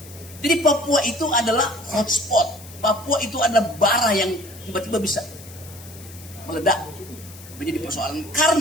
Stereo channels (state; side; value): noise; left; hiss, 18 dB below the sound